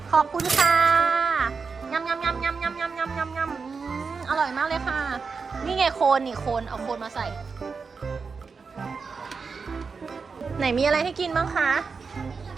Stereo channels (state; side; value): quieter; left; 5.0 dB